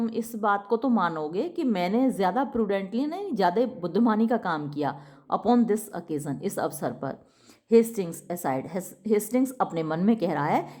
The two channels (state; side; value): identical; both; correlation 1.00